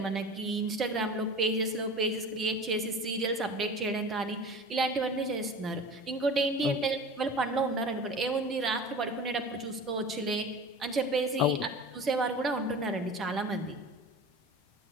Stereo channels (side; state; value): both; normal; correlation 0.36